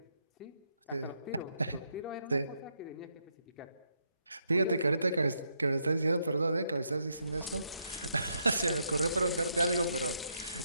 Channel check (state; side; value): inverted; both; correlation -0.77